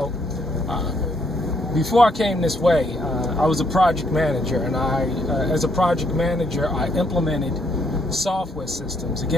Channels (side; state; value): both; normal; correlation 0.71